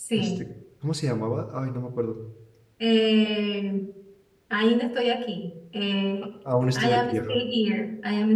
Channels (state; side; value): identical; both; correlation 1.00